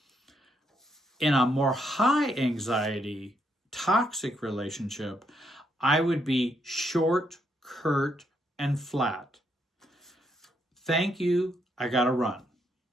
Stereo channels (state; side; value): normal; both; correlation 0.76